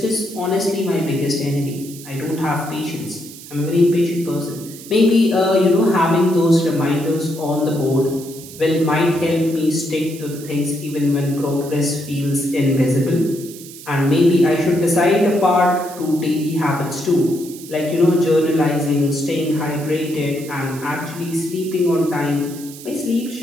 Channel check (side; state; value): right; noise; hiss, 16 dB below the sound